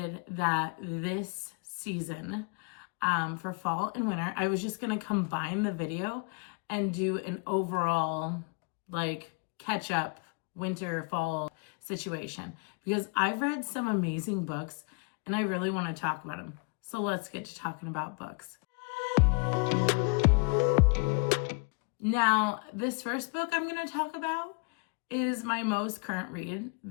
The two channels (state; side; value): quieter; right; 33.8 dB